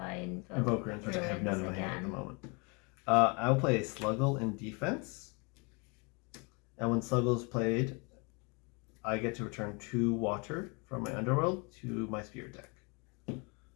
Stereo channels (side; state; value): right; quieter; 31.2 dB